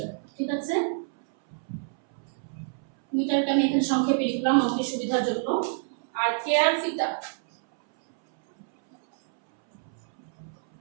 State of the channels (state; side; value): silent; left; 60 dB below the other